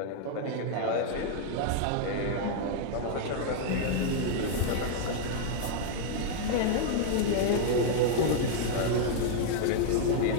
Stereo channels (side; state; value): both; different; correlation 0.00